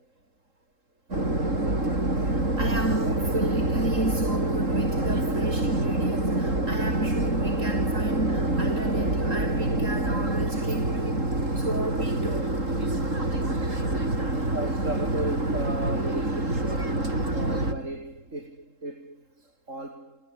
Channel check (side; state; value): left; late; 3.7 ms